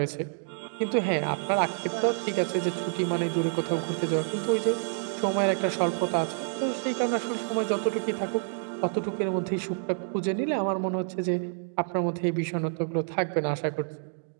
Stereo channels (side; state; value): left; silent; digital silence